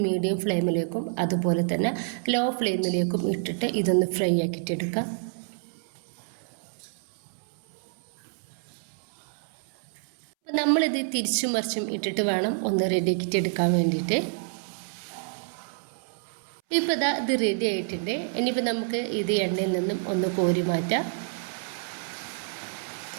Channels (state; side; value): silent; left; 59 dB below the other